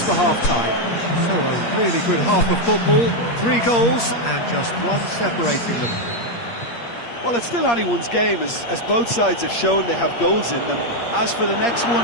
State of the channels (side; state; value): right; late; 8.5 ms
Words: for half-time. So a really good half of football. 3 goals and just one separating them. Well, it's still anyone's game, as both sides have shown they have goals in them. As for the next